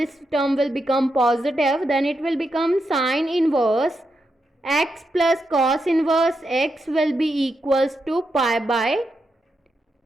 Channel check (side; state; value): both; normal; correlation 0.84